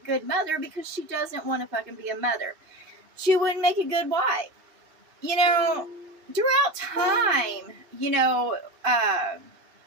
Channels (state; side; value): late; left; 2.7 ms